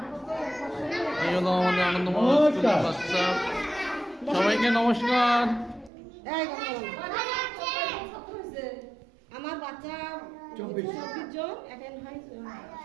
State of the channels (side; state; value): left; drops out; at 5.9 s